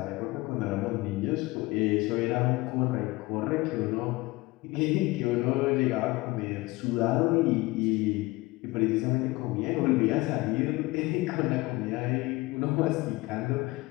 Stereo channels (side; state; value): right; quieter; 21.4 dB